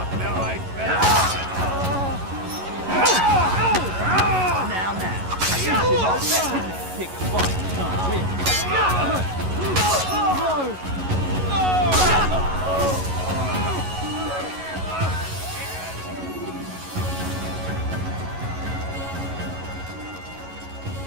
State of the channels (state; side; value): late; left; 11 ms